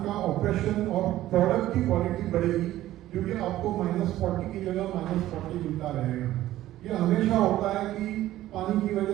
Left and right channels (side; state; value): left; quieter; 14.4 dB